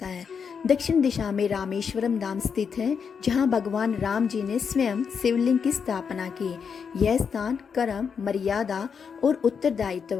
है। दक्षिण दिशा में रामेश्वरम धाम स्थित है, जहां भगवान राम जी ने स्वयं शिवलिंग की स्थापना की। यह स्थान कर्म, मर्यादा और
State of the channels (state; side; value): quieter; right; 6.4 dB